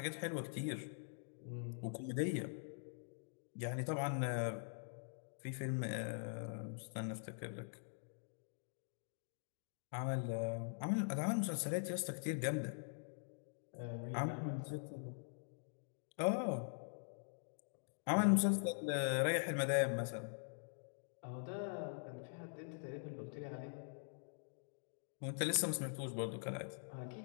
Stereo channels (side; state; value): right; silent; digital silence